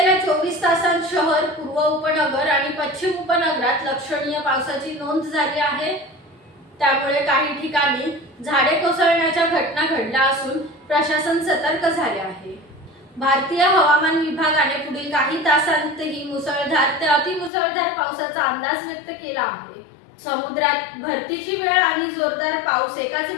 24 तासांत शहर, पूर्व उपनगर आणि पश्चिम उपनगरात लक्षणीय पावसाची नोंद झाली आहे। त्यामुळे काही ठिकाणी झाडे कोसळण्याच्या घटना घडल्या असून प्रशासन सतर्क झाले आहे। भारतीय हवामान विभागाने पुढील काही तासांतही मुसळधार ते अतिमुसळधार पावसाचा अंदाज व्यक्त केला आहे। समुद्रात भरतीची वेळ आणि जोरदार पाऊस एकाच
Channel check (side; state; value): right; drops out; at 17.5 s